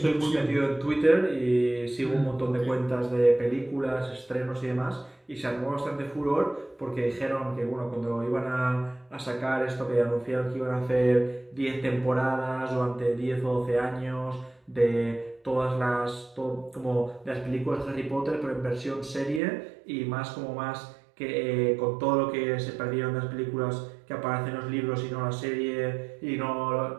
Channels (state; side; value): drops out; left; at 19.4 s